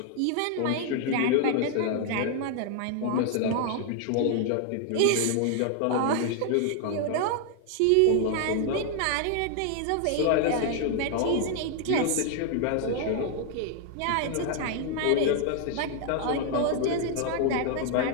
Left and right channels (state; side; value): different; both; correlation 0.00